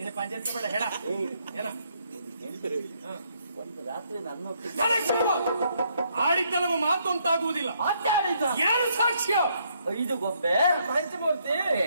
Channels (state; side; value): inverted; both; correlation -0.72